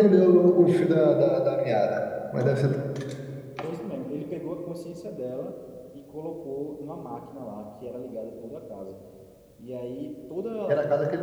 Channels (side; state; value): both; identical; correlation 1.00